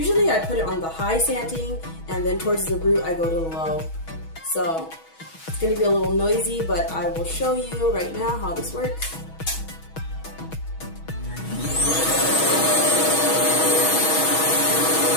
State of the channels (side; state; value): right; late; 6.2 ms